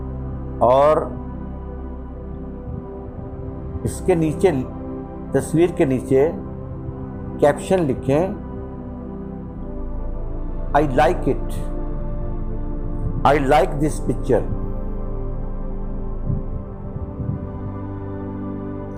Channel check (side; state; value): both; identical; correlation 1.00